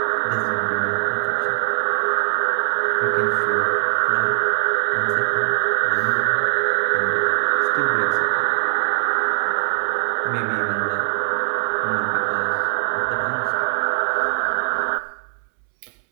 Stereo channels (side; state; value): left; silent; 65 dB below the other